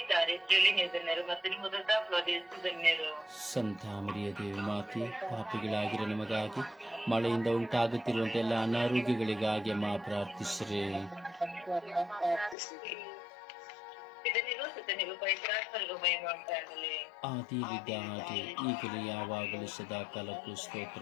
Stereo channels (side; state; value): right; drops out; at 12.6 s